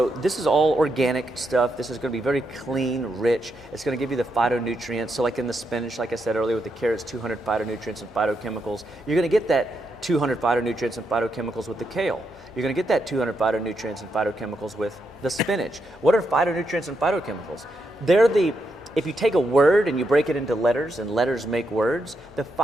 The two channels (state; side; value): normal; both; correlation 0.82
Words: this is all organic stuff. This is going to be very clean, rich. It's going to give you the phytonutrients. So like in the spinach, like I said earlier with the carrots, 200 phytonutrients and phytochemicals. You're going to get that 200 phytonutrients and phytochemicals with the kale. You're going to get that 200 phytonutrients and phytochemicals with the spinach. What are phytonutrients and phytochemicals? If you take a word and you break it into letters, and letters make words, the